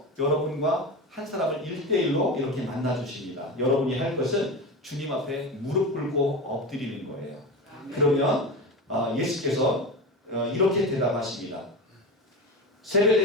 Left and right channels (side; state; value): both; normal; correlation 0.24